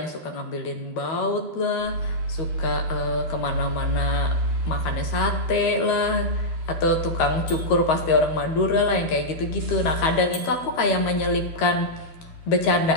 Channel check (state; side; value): late; right; 13 ms